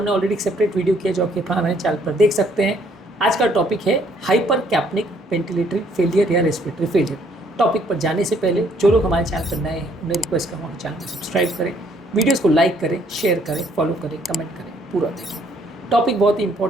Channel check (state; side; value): normal; both; correlation 0.65